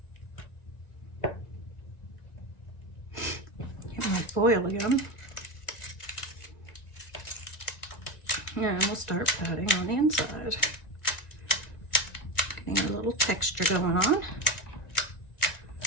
Get my foil again. And we'll start patting on the inside. Getting a little texture going on.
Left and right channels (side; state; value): right; late; 1.9 ms